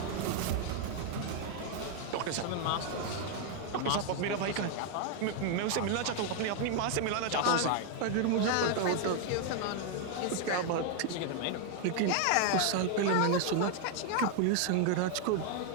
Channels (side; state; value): both; different; correlation 0.00